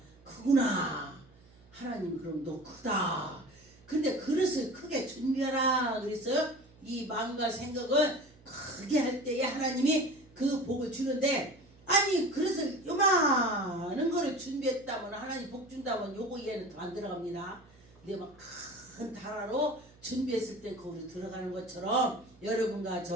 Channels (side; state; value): right; noise; hum, 26 dB below the sound